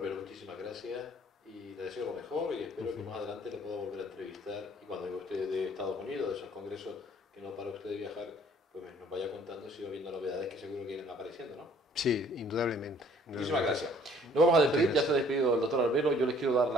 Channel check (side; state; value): both; normal; correlation 0.58